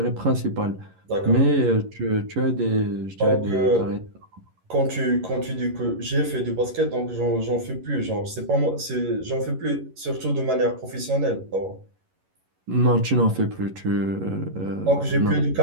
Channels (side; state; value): left; late; 11 ms